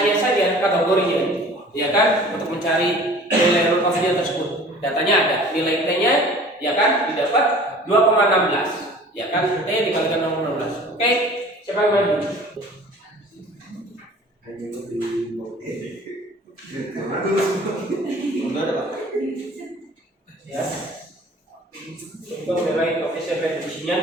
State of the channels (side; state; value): both; normal; correlation 0.46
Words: saja kategorinya, ya kan? Untuk mencari nilai turn off-nya tersebut. Datanya ada, nilai T-nya, ya kan, didapat 2,16, ya kan? T dikalikan 0,16. Oke, siapa yang maju? Ya. Untuk nilai koefisien reduksinya,